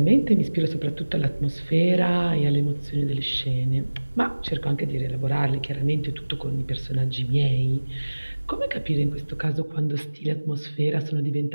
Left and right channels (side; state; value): both; inverted; correlation -1.00